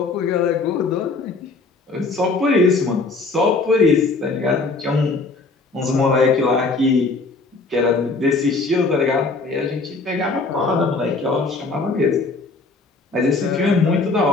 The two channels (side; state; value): right; quieter; 3.7 dB